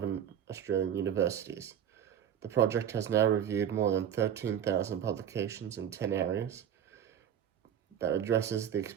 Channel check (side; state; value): left; quieter; 9.5 dB